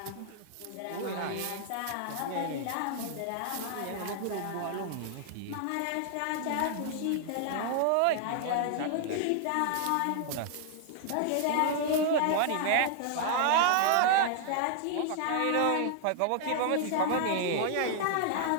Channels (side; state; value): both; different; correlation 0.00